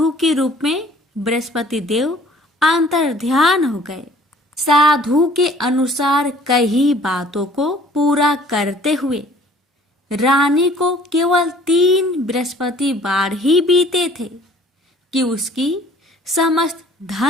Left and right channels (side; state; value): both; normal; correlation 0.54